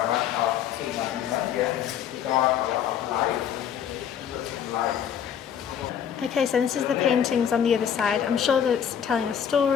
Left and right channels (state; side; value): quieter; right; 8.7 dB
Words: of God of life. Okay, so this is the paintings on the other side. I'm sure that it's telling a